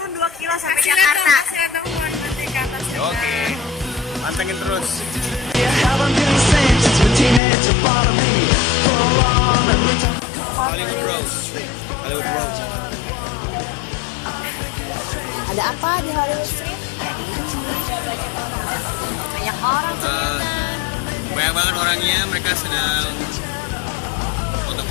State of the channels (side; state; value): right; drops out; at 7.4 s